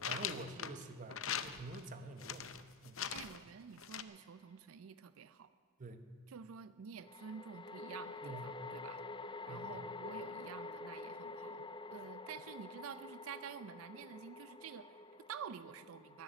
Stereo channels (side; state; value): both; normal; correlation 0.14